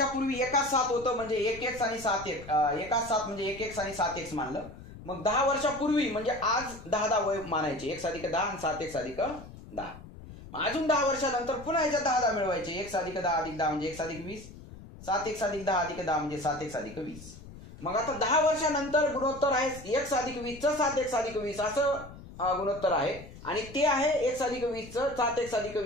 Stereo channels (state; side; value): noise; left; rumble, 16 dB below the sound